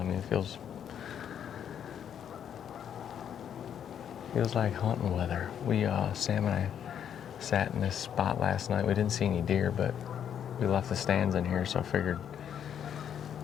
mean, it feels like hunting weather. Sam and I sat in this spot last night. We didn't see any deer, but we left the stands in here, so I figured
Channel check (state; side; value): quieter; right; 9.0 dB